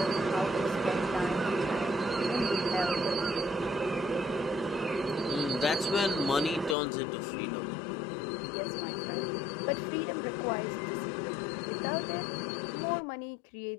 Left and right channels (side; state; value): right; drops out; at 6.8 s